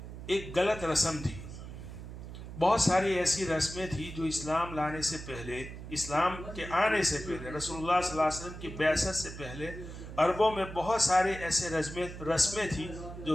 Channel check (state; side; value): noise; right; hum, 11 dB below the sound